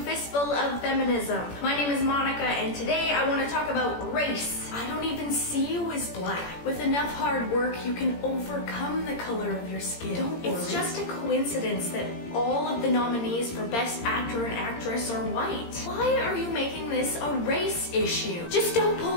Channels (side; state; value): right; late; 17 ms